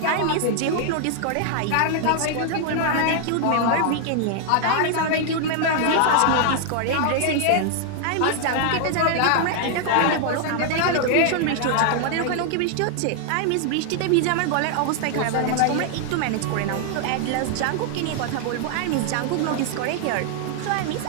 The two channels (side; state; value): both; different; correlation 0.00